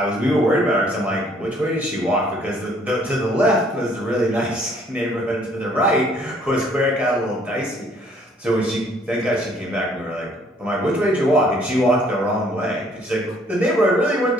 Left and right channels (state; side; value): normal; both; correlation 0.61